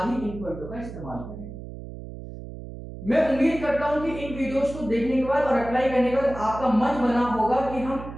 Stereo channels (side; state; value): right; noise; hum, 11 dB below the sound